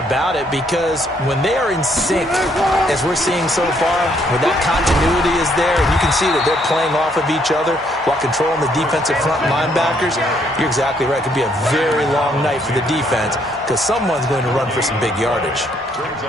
it, because when they are in sync, as we're seeing so far, when that continuity is there, and you can see that they're playing off of each other while controlling the defensive front linebackers, you're exactly right. It could be a very long night for the defense, because someone's going to run for some big yardage.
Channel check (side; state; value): both; normal; correlation 0.70